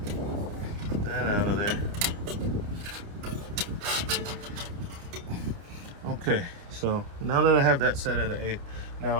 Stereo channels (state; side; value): late; left; 29 ms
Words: Get that out of there. Okay, so now that I have that set at an 1/8,